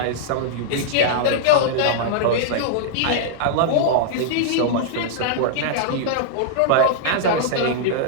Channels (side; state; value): both; different; correlation -0.01